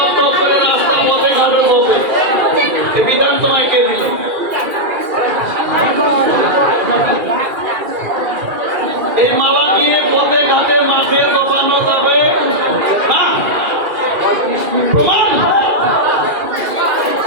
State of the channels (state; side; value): late; left; 2.4 ms